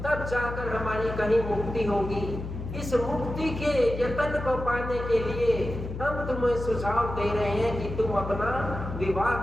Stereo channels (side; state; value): left; noise; hum, 7 dB below the sound